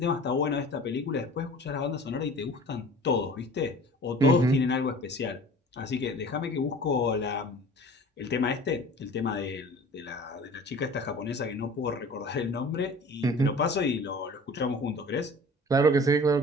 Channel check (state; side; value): normal; both; correlation 0.44